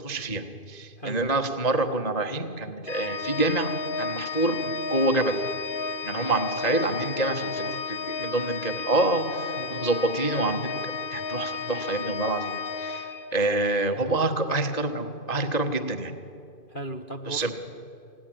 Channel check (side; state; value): right; late; 2.5 ms